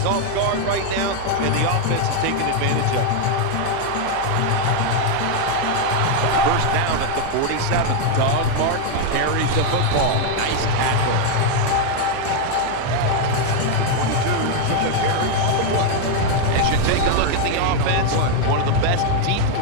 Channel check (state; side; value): different; both; correlation 0.01